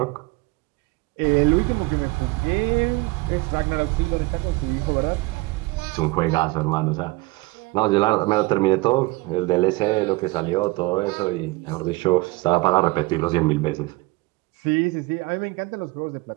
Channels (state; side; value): quieter; left; 23.1 dB